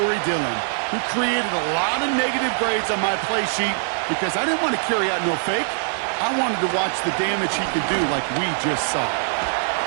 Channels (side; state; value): left; silent; digital silence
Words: Dillon, who created a lot of negative grades on my play sheet because I didn't want to carry out no fake. I wanted to watch the damage he could do like we just saw.